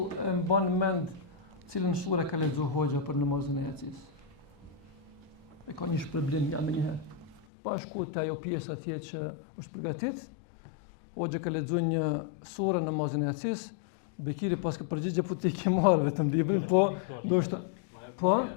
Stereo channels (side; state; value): right; drops out; at 7.5 s